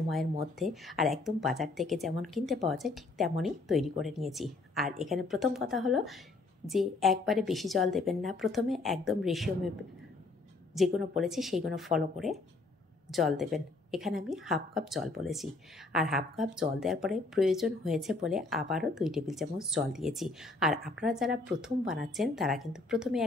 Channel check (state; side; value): quieter; right; 3.3 dB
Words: মধ্যে। আর একদম বাজার থেকে যেমন কিনতে পাওয়া যায় ঠিক তেমনই তৈরি করে নিয়েছি। আর এখানে প্রথম কথা হলো যে একবারে বেশি জল দেবেন না, প্রথমে একদম রেশিও মেপে যেগুলো বলেছি সেইগুলো ফলো করে জল দেবেন। এখানে আমি হাফ কাপ জল বলেছি, আর হাফ কাপ জল দেওয়ার পরে প্রয়োজন হয়েছে বলে আবারও 2 টেবিল চামচ জল দিয়েছি। আর আপনারা যারা প্রথম বানাচ্ছেন তারা কিন্তু প্রথমে